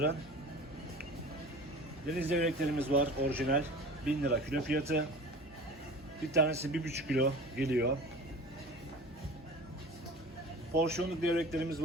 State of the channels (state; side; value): normal; both; correlation 0.38